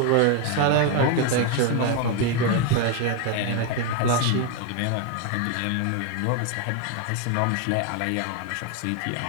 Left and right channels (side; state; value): both; different; correlation 0.01